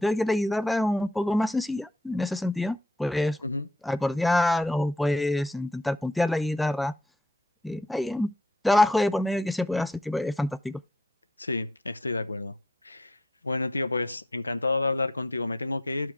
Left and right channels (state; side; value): normal; both; correlation 0.65